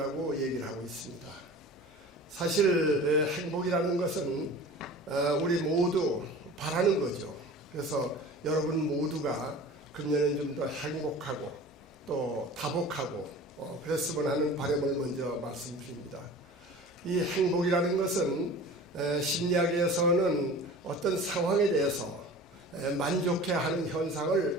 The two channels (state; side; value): normal; both; correlation 0.39